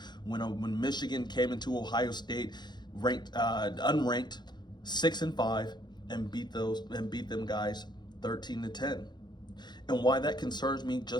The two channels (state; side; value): late; right; 0.21 ms